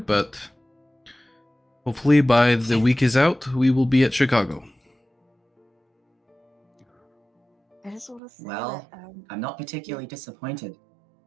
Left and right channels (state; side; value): drops out; left; at 8.2 s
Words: hopefully by the week is out, we will be at Chicago. I just want to say Well, that I'm not particularly disappointed.